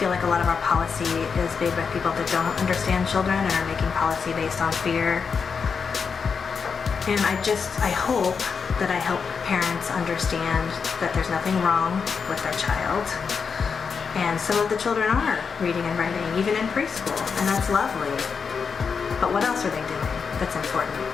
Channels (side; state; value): right; quieter; 5.8 dB